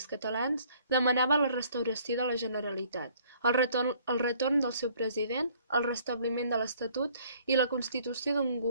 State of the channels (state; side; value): inverted; both; correlation -0.59